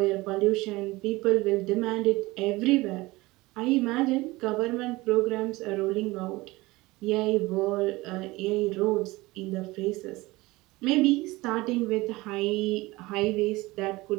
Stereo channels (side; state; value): left; quieter; 20.9 dB